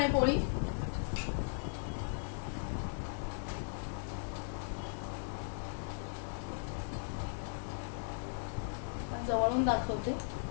पोळी. जवळून दाखवते.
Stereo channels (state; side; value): silent; right; digital silence